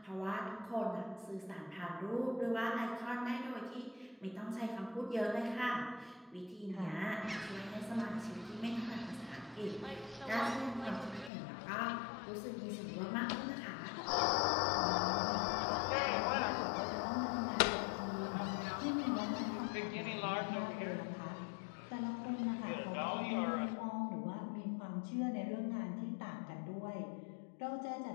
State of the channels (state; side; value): drops out; right; at 11.3 s